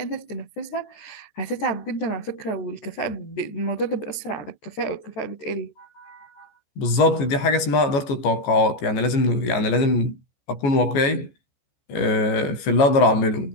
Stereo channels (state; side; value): late; right; 14 ms